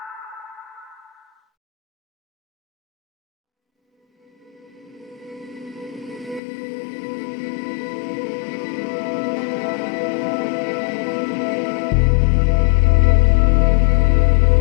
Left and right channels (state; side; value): drops out; right; at 6.4 s